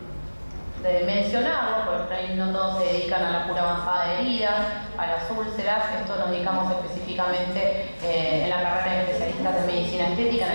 mencionarlo, porque ahí no todos se dedican a la cura avanzada de heridas, a las úlceras, esto nos dedicamos específicamente en la carrera de especialistas de medicina estética en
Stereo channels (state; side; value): inverted; both; correlation -1.00